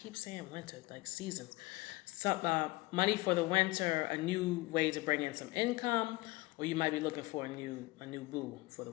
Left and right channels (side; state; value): right; quieter; 21.5 dB